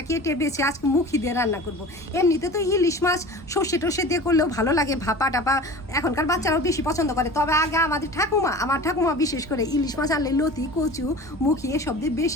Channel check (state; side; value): normal; both; correlation 0.37